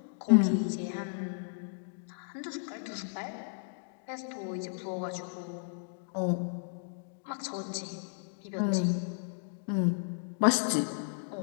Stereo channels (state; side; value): silent; right; digital silence